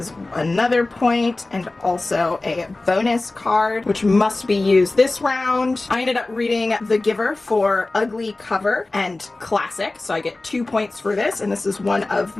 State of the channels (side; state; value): right; quieter; 3.1 dB